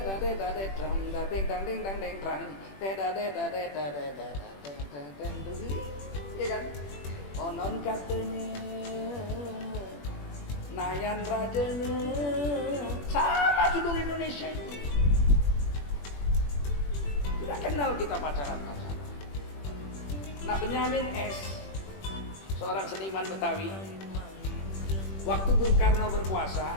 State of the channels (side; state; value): right; late; 21 ms